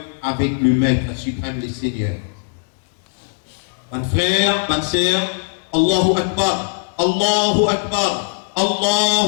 avec le Maître suprême, le Seigneur. Mon frère, ma sœur, Allahu Akbar, Allahu Akbar,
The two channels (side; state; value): right; silent; digital silence